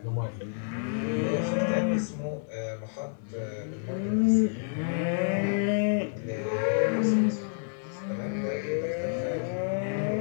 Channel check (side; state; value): right; silent; 59 dB below the other